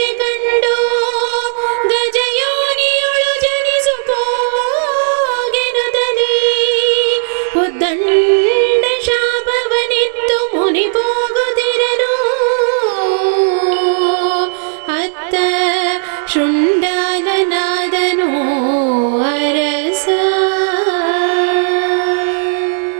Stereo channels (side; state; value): left; silent; digital silence